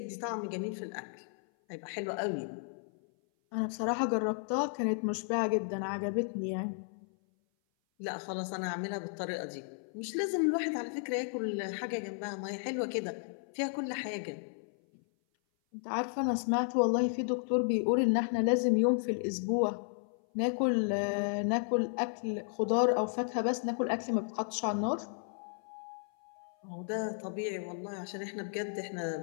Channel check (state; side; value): silent; right; 55 dB below the other